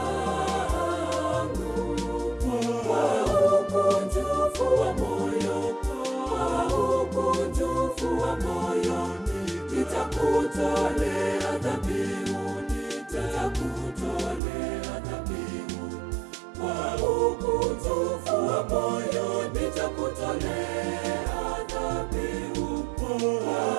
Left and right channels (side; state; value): left; drops out; at 14.4 s